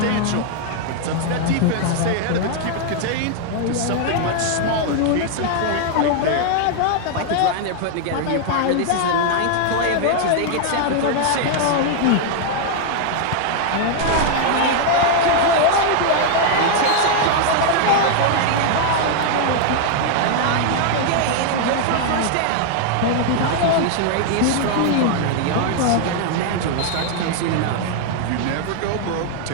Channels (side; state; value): both; different; correlation 0.00